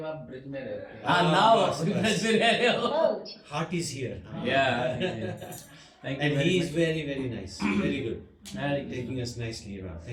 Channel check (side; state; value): both; identical; correlation 1.00